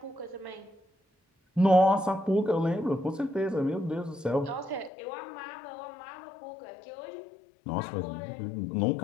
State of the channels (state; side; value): drops out; right; at 4.9 s